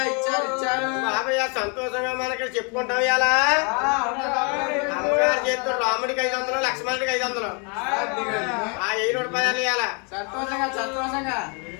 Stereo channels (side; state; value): right; quieter; 35.6 dB